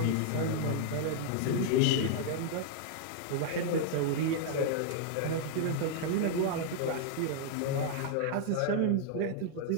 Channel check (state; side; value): different; both; correlation -0.01